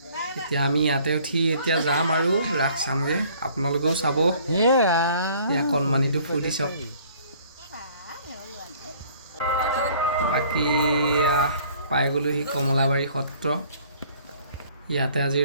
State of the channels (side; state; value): both; inverted; correlation -0.56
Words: এতিয়া আমি ইয়াতে উঠি এতিয়া যাম আৰু ৰাস চামগৈ। আপোনালোকেও চাব। এয়া কণমানিটো ফূৰ্তি চাওক। বাকী পাই গ'লোহি কমলাবাৰী সত্ৰ। ইয়াতে আজি